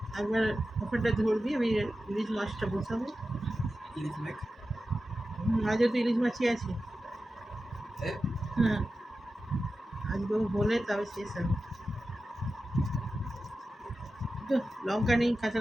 একবার ওখানটা ধরবি, আমি ইলিশ মাছটা বসাবো। আজও তো ইলিশ মাছই আছে। হ্যাঁ, আজকে বলে তবে শেষ হবে তো। লঙ্কা নেই, কাঁচা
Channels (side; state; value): both; normal; correlation 0.93